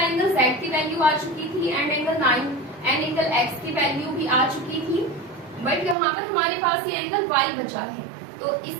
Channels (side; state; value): left; drops out; at 6.0 s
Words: Z की वैल्यू आ चुकी थी and angle 9 and angle X की वैल्यू भी आ चुकी थी, बट यहाँ पर हमारे पास ये एंगल Y बचा है। तो